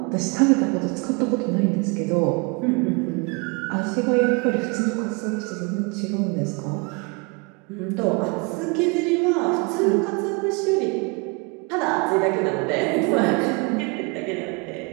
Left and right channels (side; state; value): left; quieter; 30.6 dB